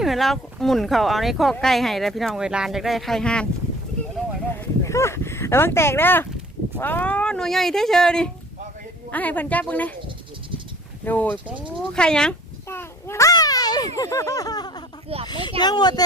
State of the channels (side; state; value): both; normal; correlation 0.50